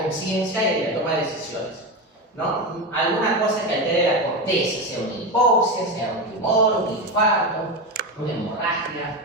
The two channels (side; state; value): both; normal; correlation 0.17